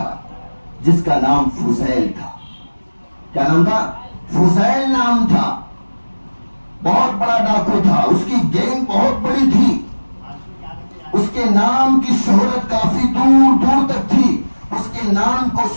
جس کا نام فضیل تھا۔ کیا نام تھا؟ فضیل نام تھا۔ بہت بڑا ڈاکو تھا، اس کی گینگ بہت بڑی تھی، اس کے نام کی شہرت کافی دور دور تک تھی۔ اس کے نام کو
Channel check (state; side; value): inverted; both; correlation -1.00